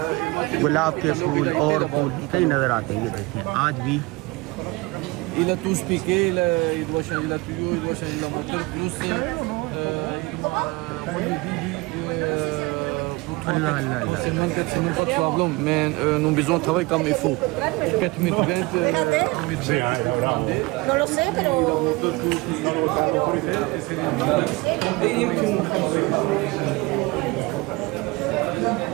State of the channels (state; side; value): quieter; left; 24.0 dB